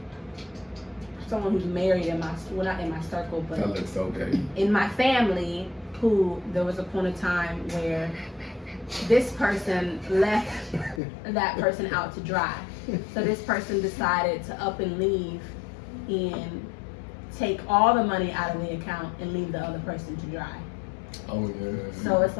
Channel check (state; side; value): drops out; right; at 11.0 s